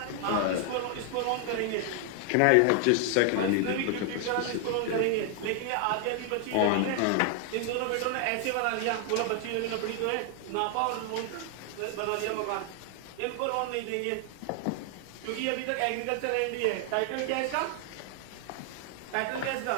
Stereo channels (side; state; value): both; different; correlation 0.00